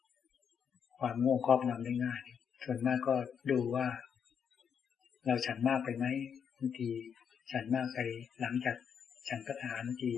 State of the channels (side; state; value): right; quieter; 7.4 dB